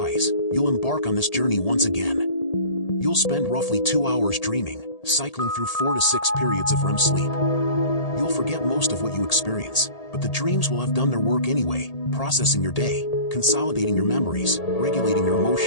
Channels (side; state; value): right; late; 1.8 ms